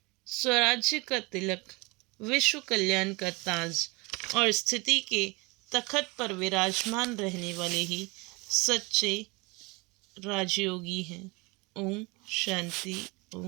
स्वराज्य का तिलक, विश्व कल्याण का ताज और स्थिति के तखत पर विराजमान रहने वाले ही सच्चे राजयोगी हैं। ओम शांति,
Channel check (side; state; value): left; quieter; 26.0 dB